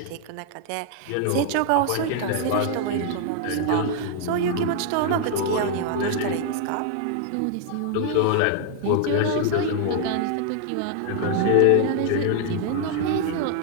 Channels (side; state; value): both; different; correlation 0.00